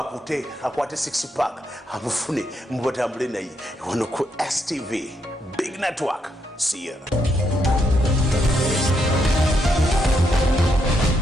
akwate 6 pack amufune mubatambule naye wano ku STV Big Network. See ya.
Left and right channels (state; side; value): normal; both; correlation 0.78